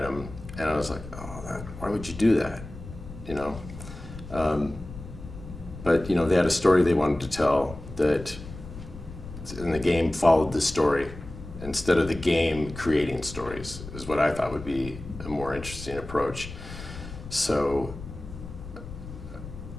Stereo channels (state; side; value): noise; left; rumble, 12 dB below the sound